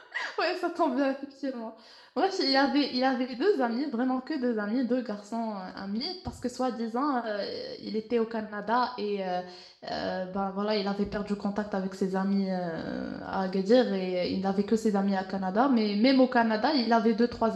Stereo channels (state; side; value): identical; both; correlation 1.00